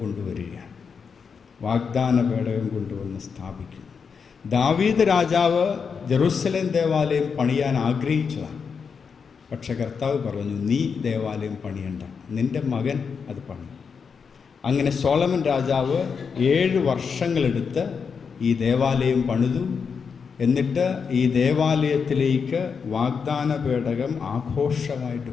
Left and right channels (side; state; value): right; quieter; 6.0 dB